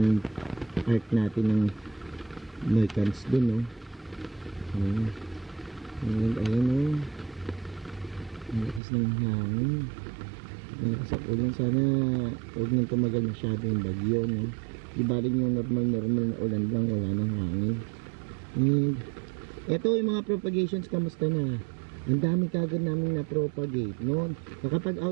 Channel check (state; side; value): drops out; left; at 8.8 s